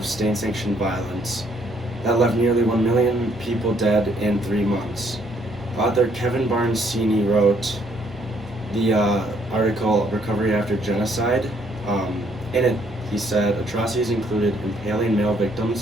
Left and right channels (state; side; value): normal; both; correlation 0.67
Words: state-sanctioned violence that left nearly 1 million people dead in 3 months. Author Kevin Barnes-Sini wrote the article Recovery After Genocide. In it, he said atrocities included impaling male